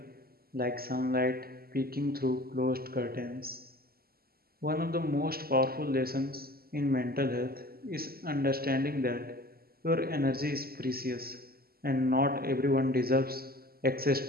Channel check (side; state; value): left; late; 0.44 ms